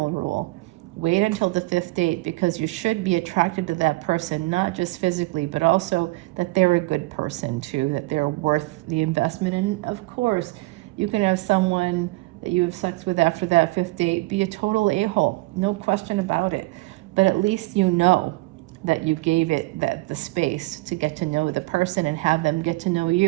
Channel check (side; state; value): left; quieter; 22.3 dB